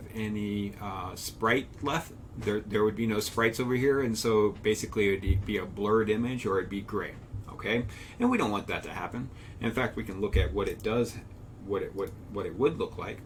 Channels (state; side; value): identical; both; correlation 1.00